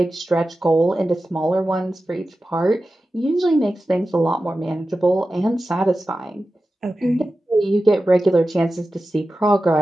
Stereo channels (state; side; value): normal; both; correlation 0.94